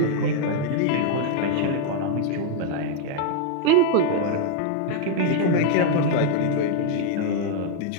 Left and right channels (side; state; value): both; different; correlation -0.01